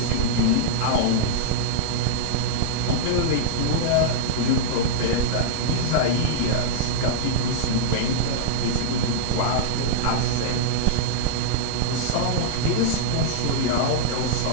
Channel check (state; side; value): different; both; correlation -0.03